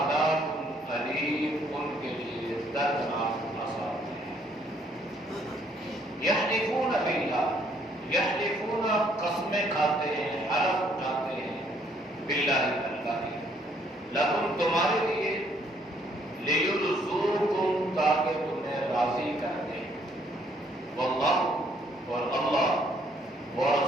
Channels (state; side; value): normal; both; correlation 0.66